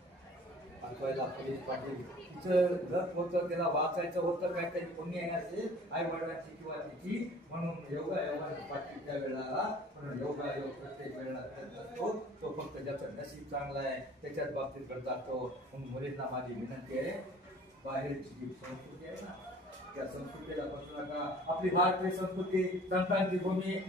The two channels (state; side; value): normal; both; correlation 0.49